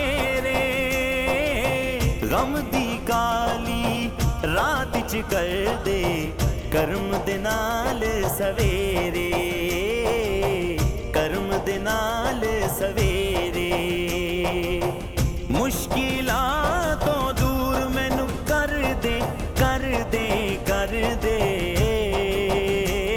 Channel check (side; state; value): both; identical; correlation 1.00